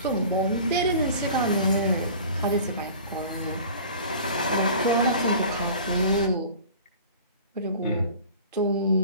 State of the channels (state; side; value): inverted; both; correlation -0.42